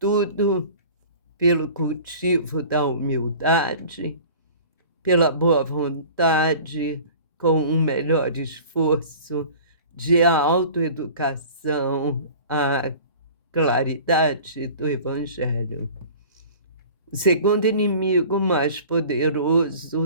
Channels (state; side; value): inverted; both; correlation -0.43